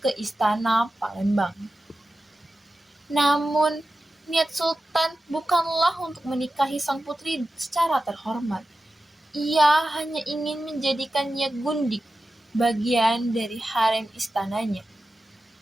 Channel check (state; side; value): normal; both; correlation 0.93